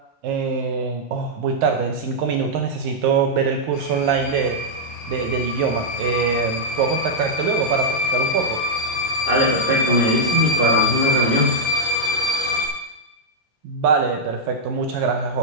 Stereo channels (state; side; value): normal; both; correlation -0.06